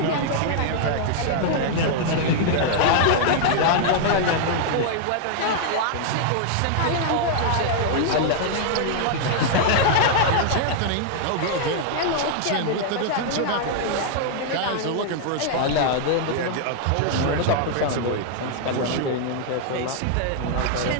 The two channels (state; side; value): different; both; correlation -0.01